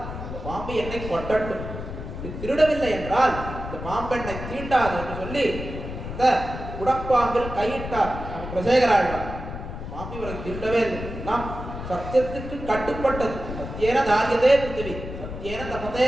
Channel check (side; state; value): left; noise; rumble, 8 dB below the sound